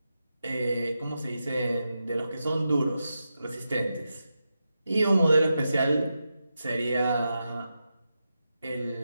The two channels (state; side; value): inverted; both; correlation -0.89